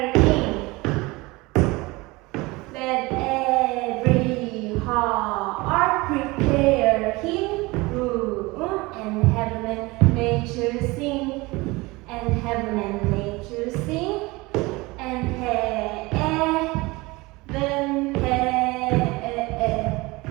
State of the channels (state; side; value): quieter; left; 22.8 dB